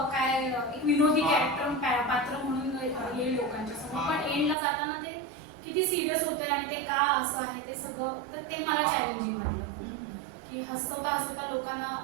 काय एक विनोदी कॅरेक्टर पात्र म्हणून येईल लोकांच्या समोर पण एंडला जाताना ते किती सिरियस होते आणि ते का असं आहे ते सगळं तर ते मला चॅलेंजिंग वाटलं की हसवता लोकांना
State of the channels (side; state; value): left; drops out; at 4.5 s